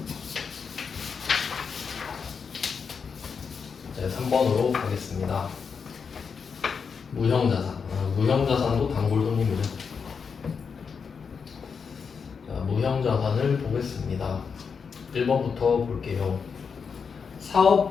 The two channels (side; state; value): right; quieter; 5.9 dB